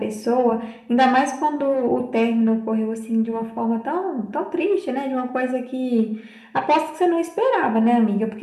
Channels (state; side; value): identical; both; correlation 1.00